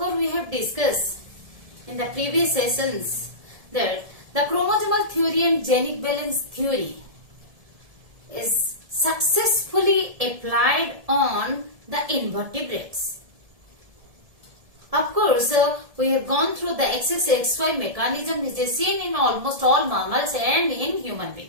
we have discussed in the previous sessions that the chromosomal theory and genic balance theory is successfully applied on the invertebrates. Of course, we have gone through the XXXY mechanism which is seen in almost all mammals and in human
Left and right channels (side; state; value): left; late; 1.7 ms